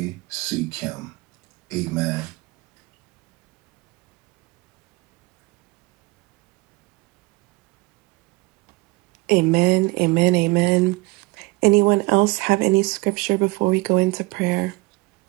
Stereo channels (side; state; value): left; quieter; 23.7 dB